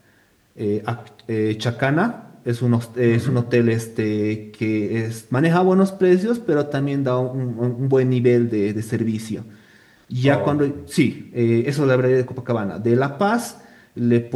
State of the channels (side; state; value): both; identical; correlation 1.00